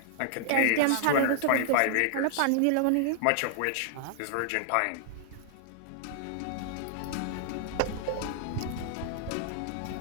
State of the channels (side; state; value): both; different; correlation -0.01